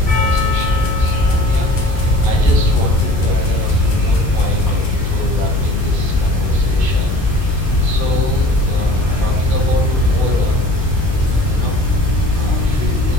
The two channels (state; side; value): noise; left; hum, 3 dB below the sound